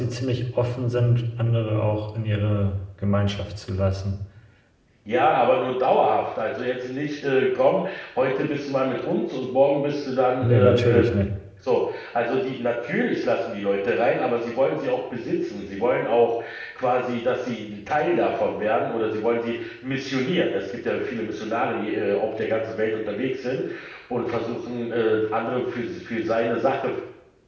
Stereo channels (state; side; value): identical; both; correlation 1.00